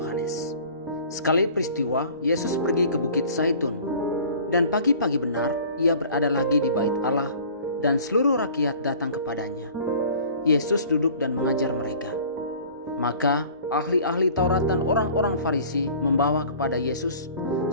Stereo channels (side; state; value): both; inverted; correlation -0.47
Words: Sekali peristiwa, Yesus pergi ke Bukit Zaitun, dan pagi-pagi benar ia berada lagi di bait Allah, dan seluruh rakyat datang kepadanya. Yesus duduk dan mengajar mereka. Maka ahli-ahli Taurat dan orang-orang Farisi membawa kepada Yesus